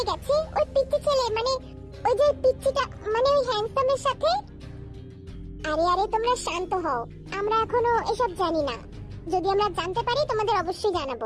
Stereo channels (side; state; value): both; identical; correlation 1.00